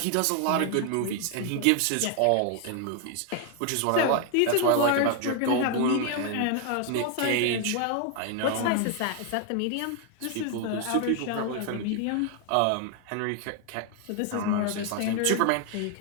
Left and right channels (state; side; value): different; both; correlation 0.00